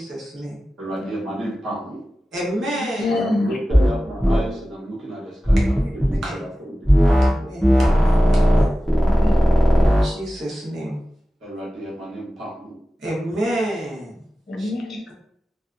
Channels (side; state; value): both; normal; correlation 0.95